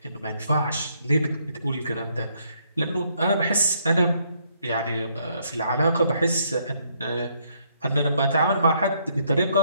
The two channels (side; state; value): both; inverted; correlation -0.70